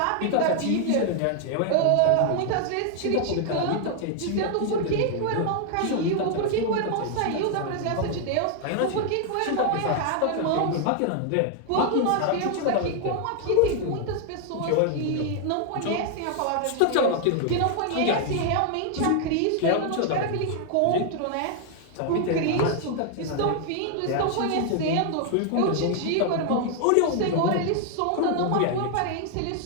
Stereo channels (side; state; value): both; different; correlation 0.00